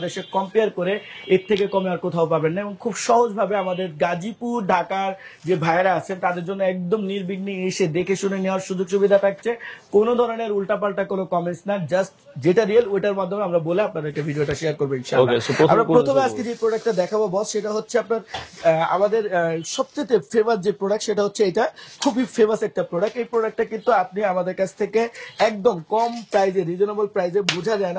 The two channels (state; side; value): identical; both; correlation 1.00